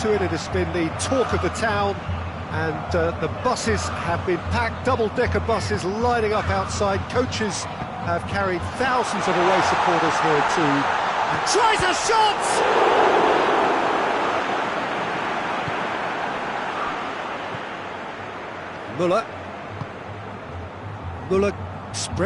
it. It has been the talk of the town and the buses have been packed, double-decker buses lining up outside. Coaches have carried thousands of away supporters here too. And tries a shot! Muller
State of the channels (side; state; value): both; identical; correlation 1.00